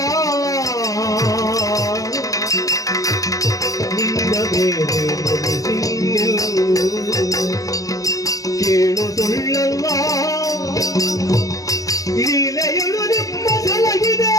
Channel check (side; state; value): right; late; 0.17 ms